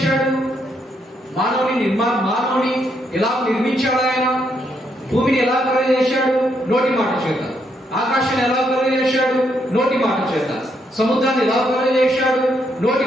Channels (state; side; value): normal; both; correlation 0.76